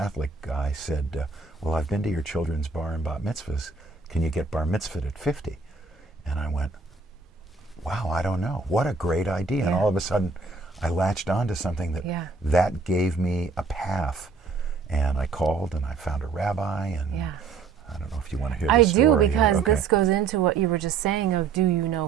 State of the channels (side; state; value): left; quieter; 4.7 dB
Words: guy said, well, I've been to your children's bar and bat mitzvahs. Can you get bar mitzvahed at 50? And I went, wow, I don't know. What a great idea. And all of a sudden, I latched onto something that gave me a path. And I called and I found a rabbi, and I don't know if you want to hear the story. I do, because this goes into what you were just saying of, do you